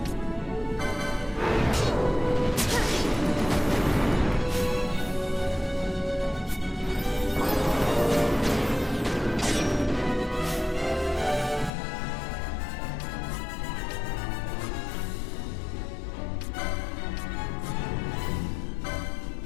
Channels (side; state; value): right; drops out; at 11.7 s